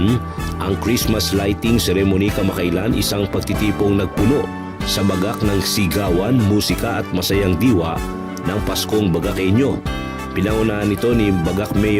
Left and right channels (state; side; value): identical; both; correlation 1.00